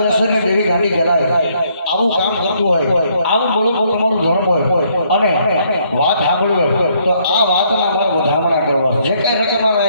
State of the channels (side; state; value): both; inverted; correlation -0.68